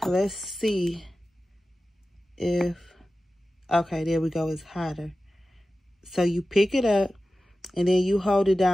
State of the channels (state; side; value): normal; both; correlation 0.94